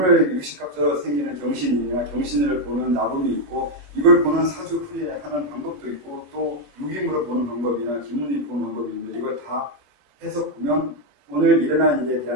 육식갑자로 생기는 경신이나 경신을 보는 나범이 있고 이걸 보는 사주풀이하는 방법도 있고 또 육임으로 보는 방법이나 기문이 보는 방법이 있는데 이걸 다 해서 보면 오늘 일어난 일에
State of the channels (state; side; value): late; left; 22 ms